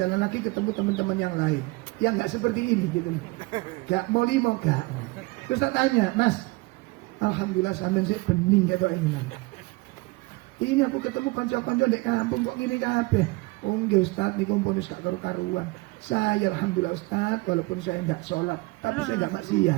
lagi ketemu teman-teman yang lain yang nggak seperti ini gitu loh, nggak mau gak. Terus tak tanya, Mas, alhamdulillah sampean sih bening gitu ini. Ini aku ketemu konco-konco dek kampung kok ngene kabeh. Oh nggih Ustaz niku pun wis gak karu-karuan. Saya alhamdulillah Ustaz walaupun saya nggak sholat, tapi saya nggak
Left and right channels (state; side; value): quieter; left; 23.5 dB